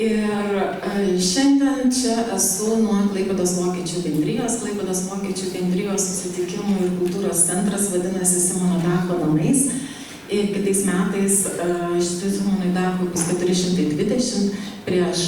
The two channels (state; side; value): identical; both; correlation 1.00